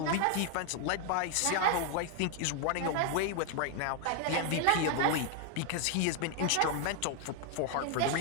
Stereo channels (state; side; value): different; both; correlation 0.00